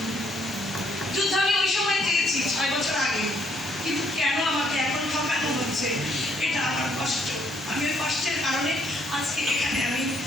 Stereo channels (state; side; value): normal; both; correlation 0.69